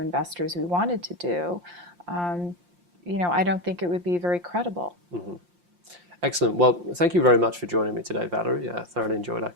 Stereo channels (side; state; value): left; late; 5.7 ms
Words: investors we wanted to do, I don't think it would be very credible. Mm-hmm. Excellent. Well, thank you very much for joining me today, Valerie. I thoroughly enjoyed our